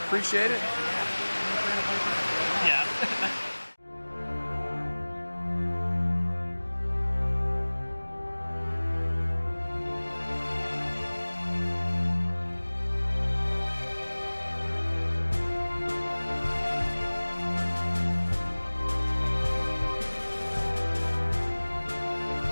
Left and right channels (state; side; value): inverted; both; correlation -1.00